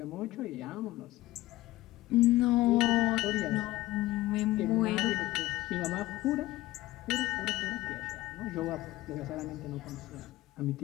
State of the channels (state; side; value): quieter; right; 17.3 dB